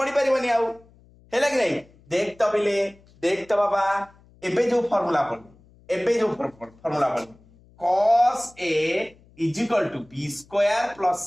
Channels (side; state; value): left; noise; hum, 28 dB below the sound